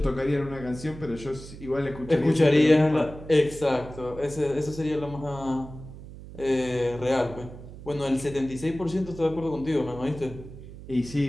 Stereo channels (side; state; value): right; noise; hum, 15 dB below the sound